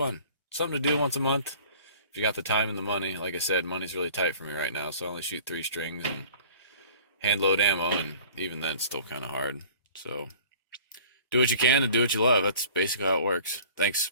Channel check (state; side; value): inverted; both; correlation -0.48